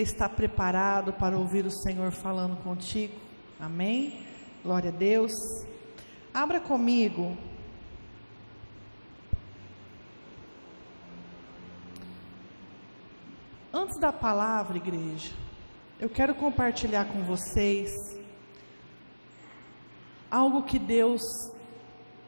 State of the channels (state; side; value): inverted; both; correlation -1.00